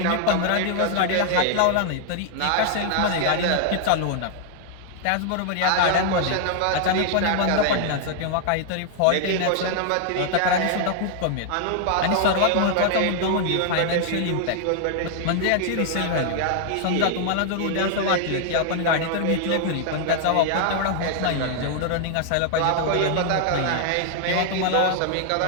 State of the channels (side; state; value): both; different; correlation 0.00